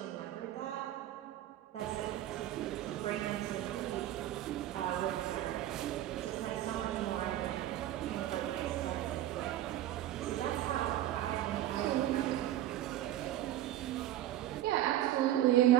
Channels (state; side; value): quieter; left; 13.4 dB